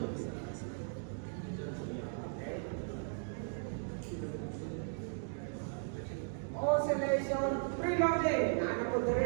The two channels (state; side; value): silent; left; digital silence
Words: oscillation preloading. Ano po